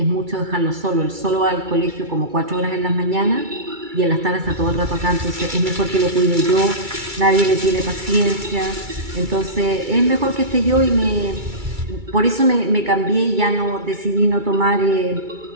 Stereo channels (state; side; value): late; left; 2.3 ms